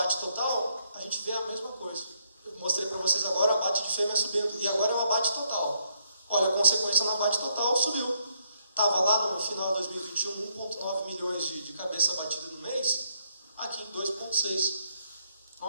total, a gente vê a mesma coisa. Eu mostrei para vocês agora o abate de fêmea subindo, e agora é o abate total. Olha, a consequência no abate total subiu. Estava lá no final de 2021, 1,9 milhões de cabeça abatida no mês, aqui em 2,6. Um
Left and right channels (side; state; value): both; inverted; correlation -0.74